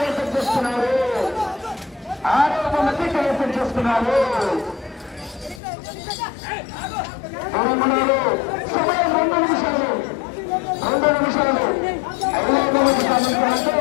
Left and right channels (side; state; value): right; drops out; at 5.6 s